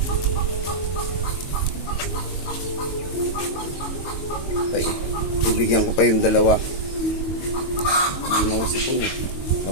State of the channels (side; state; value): right; late; 22 ms